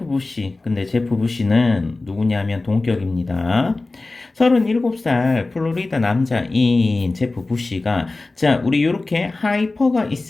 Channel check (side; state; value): right; quieter; 3.3 dB